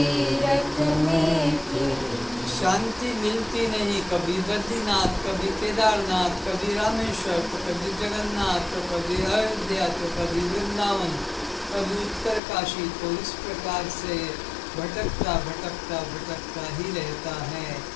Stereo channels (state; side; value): drops out; right; at 12.4 s